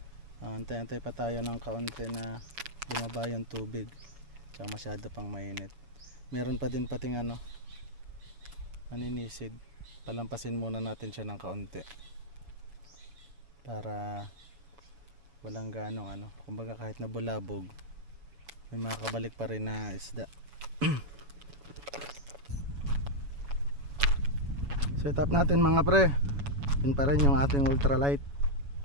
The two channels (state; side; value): late; left; 7.1 ms